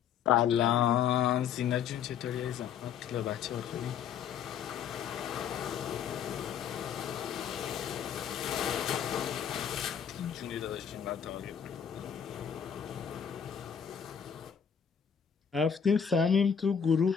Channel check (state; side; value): quieter; right; 7.9 dB